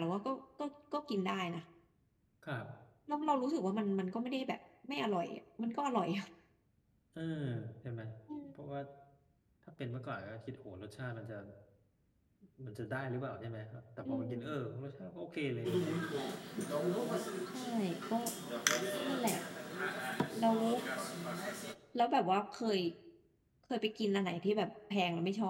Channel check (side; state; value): both; identical; correlation 1.00